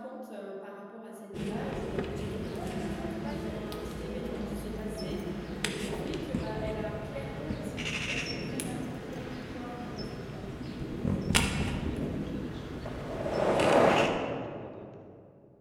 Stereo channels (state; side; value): identical; both; correlation 1.00